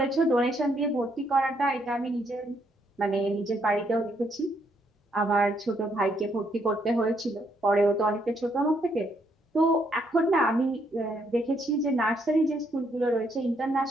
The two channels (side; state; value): both; normal; correlation 0.73